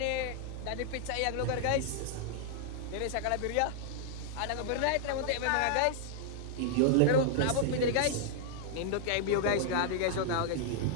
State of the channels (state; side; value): different; both; correlation -0.01